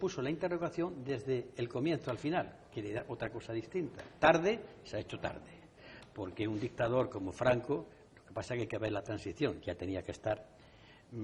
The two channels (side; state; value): both; identical; correlation 1.00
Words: la interrogación desde el comienzo al final, que era otra cosa distinta. Tarde, se ha hecho tarde, porque un dictador como Franco, lo que pasa es que hay que ver la transición, ya tenía que estar.